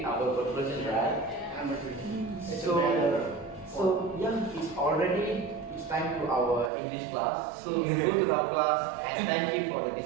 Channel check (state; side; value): drops out; left; at 6.7 s